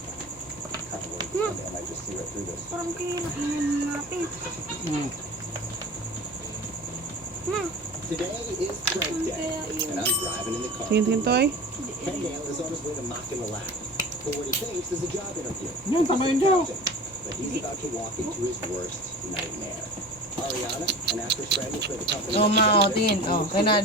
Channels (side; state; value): both; normal; correlation 0.36